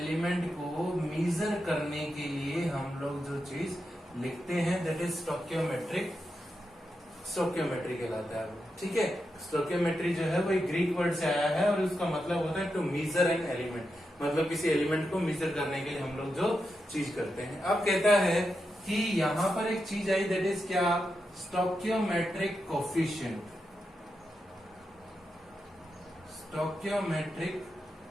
को मीजर करने के लिए हम लोग जो चीज लिखते हैं दैट इज स्टोक्योमेट्री कहलाता है, ठीक है। स्टोक्योमेट्री जो है वो एक ग्रीक वर्ड से आया है और उसका मतलब होता है टू मीजर एन एलिमेंट। मतलब किसी एलिमेंट को मीजर करने के लिए हम लोग जो चीज करते हैं। अब कहता है कि यहां पर एक चीज आई दैट इज क्या, स्टोक्योमेट्रिक कोफिशिएंट। स्टोक्योमेट्रिक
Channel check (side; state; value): both; normal; correlation 0.87